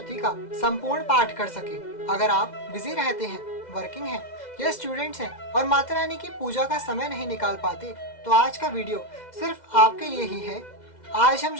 का संपूर्ण पाठ कर सके? अगर आप बिजी रहते हैं, वर्किंग हैं या स्टूडेंट्स हैं और माता रानी की पूजा का समय नहीं निकाल पाते, तो आज का वीडियो सिर्फ आपके लिए ही है। आज हम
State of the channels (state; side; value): late; right; 2.0 ms